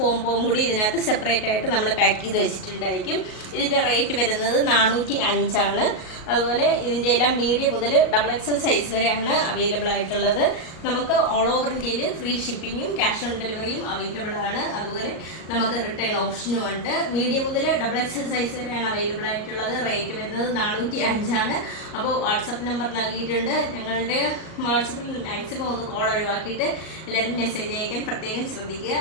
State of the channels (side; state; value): right; late; 38 ms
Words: കൂടി ഇതിനകത്ത് സെപ്പറേറ്റ് ആയിട്ട് നമ്മൾ പാക്ക് ചെയ്ത് വെച്ചിട്ടുണ്ടായിരിക്കും. ഇതിൻ്റെ റേറ്റ് വരുന്നത് 405 ആണ്. അതുപോലെ ഇതിൻ്റെ എല്ലാം മീഡിയം മുതൽ XXL സൈസ് വരെയാണ് അവൈലബിൾ ആയിട്ടുള്ളത്. നമുക്ക് ഓൾ ഓവർ ഇന്ത്യയിൽ ഫ്രീ ഷിപ്പിങ്ങും ക്യാഷ് ഓൺ ഡെലിവറിയും അവൈലബിൾ ആണ്. അതുപോലെ നമുക്ക് റിട്ടേൺ ഓപ്ഷനും ഉണ്ട്. മീഡിയം മുതൽ XXL സൈസ് വരെയാണ് അവൈലബിൾ ആയിട്ടുള്ളത്. റേറ്റ് വരുന്നത് 405 ആണ്. അപ്പോൾ വാട്സപ്പ് നമ്പർ നൽകിയിട്ടുണ്ട്. ഞങ്ങളുടെ വാട്സപ്പിൽ മാക്സിമം ഒന്ന് കോൾ ഒഴിവാക്കിയിട്ട് എല്ലാവരും മെസ്സേജ് അയക്കാൻ പ്രത്യേകം ശ്രദ്ധിക്കുക.